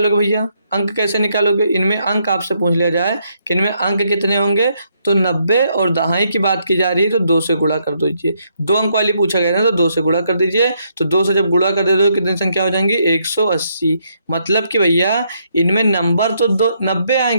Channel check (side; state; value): both; inverted; correlation -0.75